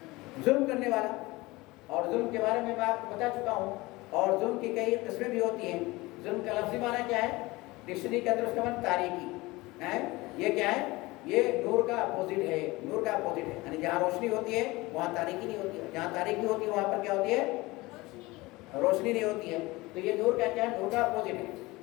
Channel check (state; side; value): quieter; right; 21.4 dB